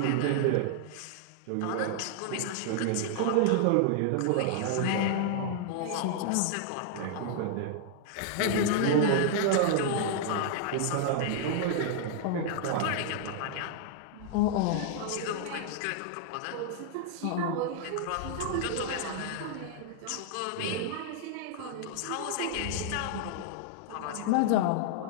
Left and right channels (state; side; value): different; both; correlation -0.01